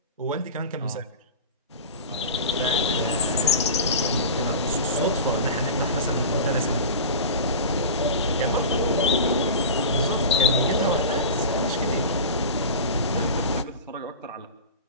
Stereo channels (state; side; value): inverted; both; correlation -0.31